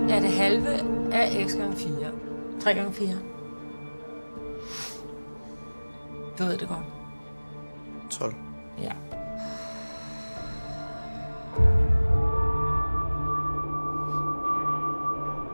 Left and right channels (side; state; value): both; inverted; correlation -1.00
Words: er det halve af x gange 4. 3 gange 4. Du ved det godt. 12. Ja.